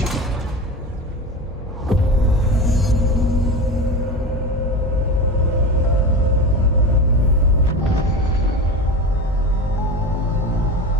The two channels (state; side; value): normal; both; correlation 0.27